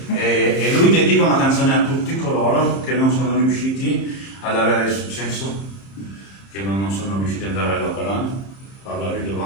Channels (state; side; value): late; right; 30 ms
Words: e lui dedica una canzone a tutti coloro che non sono riusciti ad avere successo, che non sono riusciti ad andare all'opera, parlare di